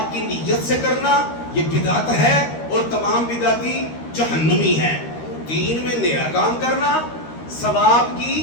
کی نیت سے کرنا یہ بدعت ہے اور تمام بدعتی جہنمی ہیں. 3 میں نیا کام کرنا ثواب کی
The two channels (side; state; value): right; late; 13 ms